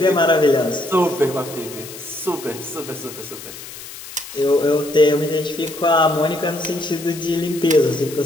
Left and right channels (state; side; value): noise; left; hiss, 14 dB below the sound